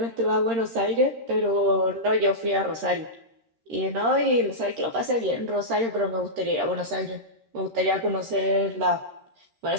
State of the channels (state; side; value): late; left; 13 ms